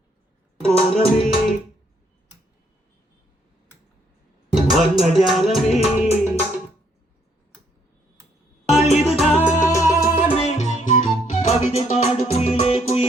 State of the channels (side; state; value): both; normal; correlation 0.69